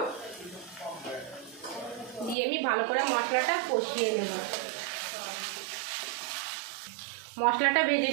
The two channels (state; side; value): drops out; left; at 2.4 s